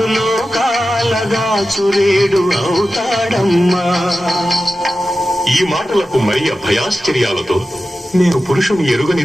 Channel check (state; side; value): normal; both; correlation 0.93